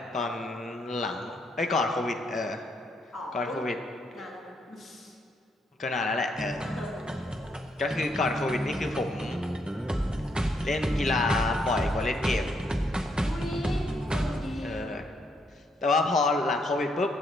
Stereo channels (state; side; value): normal; both; correlation 0.75